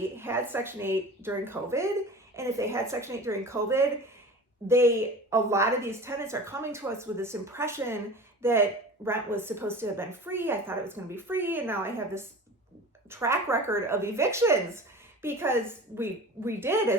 had Section 8 during COVID. And if they had Section 8 during COVID, a lot of these tenants are coming to us with this impression that rent was supposed to have been free. I thought it was going to be free. And now I have this track record of evictions because we did,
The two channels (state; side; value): normal; both; correlation 0.37